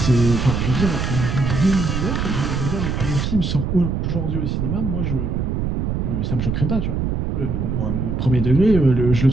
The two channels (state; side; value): noise; right; rumble, 1 dB below the sound